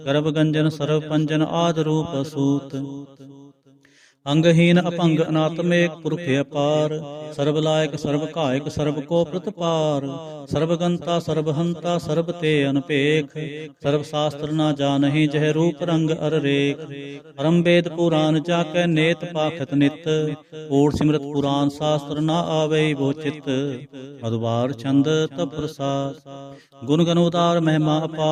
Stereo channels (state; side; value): identical; both; correlation 1.00